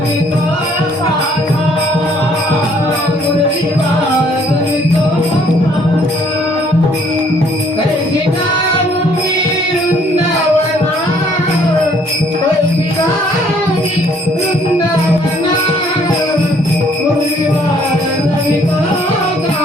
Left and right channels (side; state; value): both; normal; correlation 0.62